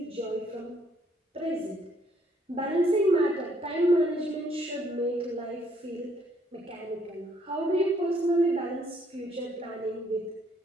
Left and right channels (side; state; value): both; normal; correlation 0.67